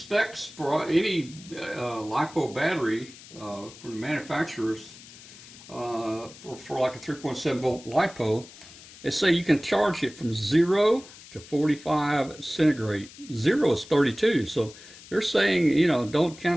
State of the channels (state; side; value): noise; left; hiss, 19 dB below the sound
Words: for any Lipo battery from the manufacturers for like a 3.7 volt Lipo, they say you can charge it from 0 to 45 centigrade. 0 is 32, so they're saying, you know, don't